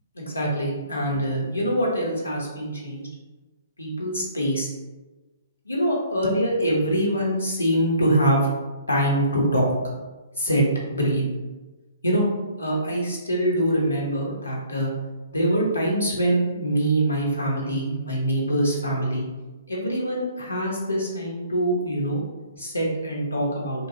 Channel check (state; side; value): inverted; both; correlation -0.58